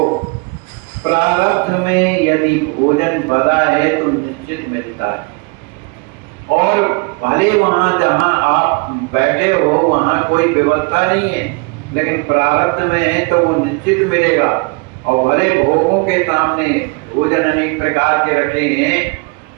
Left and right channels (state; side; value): quieter; left; 30.3 dB